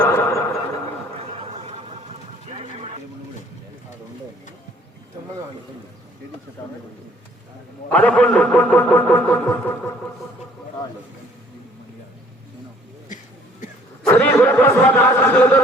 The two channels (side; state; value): both; normal; correlation 0.58